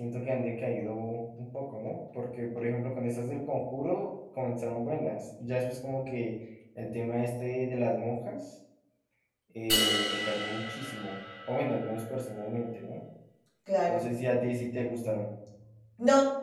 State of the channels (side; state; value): both; identical; correlation 1.00